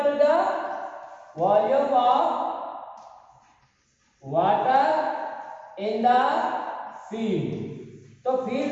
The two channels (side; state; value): both; identical; correlation 1.00